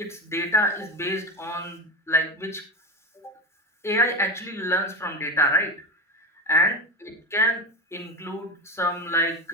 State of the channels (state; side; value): normal; both; correlation 0.23